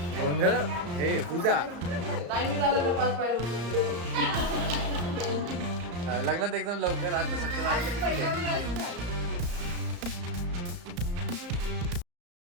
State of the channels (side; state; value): left; late; 34 ms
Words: गोंधळ हे पूजा. लग्नात एकदम लवकर आता सत्तर